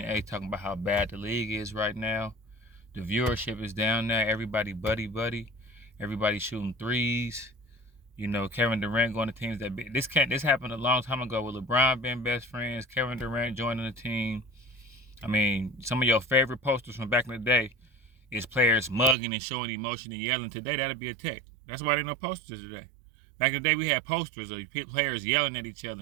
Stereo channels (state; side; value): drops out; left; at 19.2 s